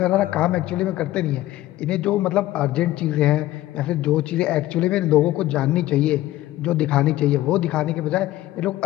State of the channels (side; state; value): right; quieter; 15.4 dB